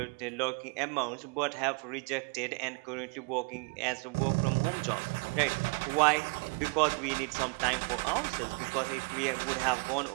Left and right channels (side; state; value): left; quieter; 31.6 dB